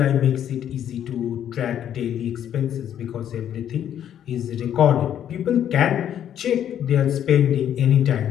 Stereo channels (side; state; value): right; quieter; 10.1 dB